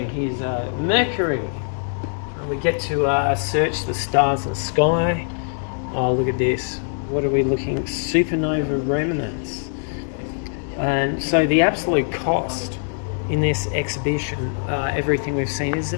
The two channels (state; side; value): silent; right; digital silence